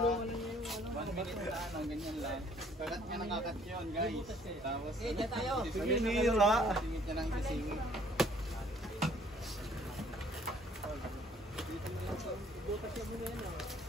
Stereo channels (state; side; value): normal; both; correlation 0.60